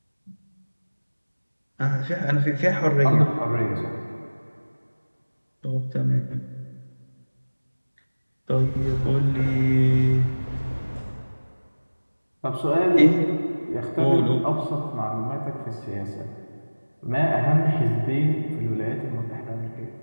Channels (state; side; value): inverted; both; correlation -1.00